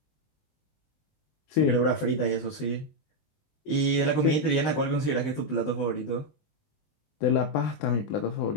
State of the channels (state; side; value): late; right; 20 ms